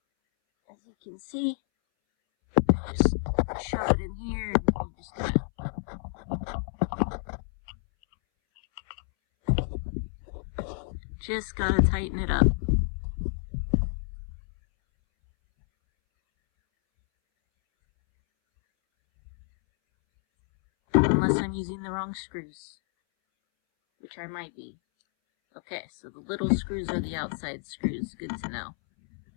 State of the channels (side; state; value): right; silent; 59 dB below the other